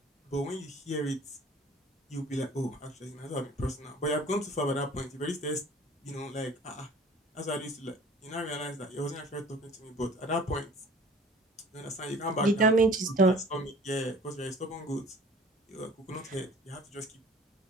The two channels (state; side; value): normal; both; correlation 0.48